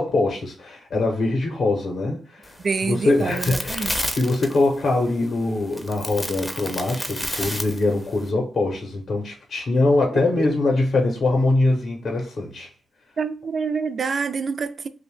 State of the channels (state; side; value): normal; both; correlation 0.88